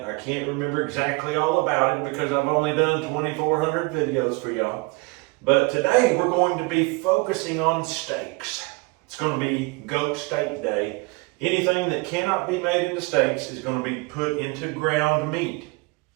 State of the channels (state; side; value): quieter; left; 27.7 dB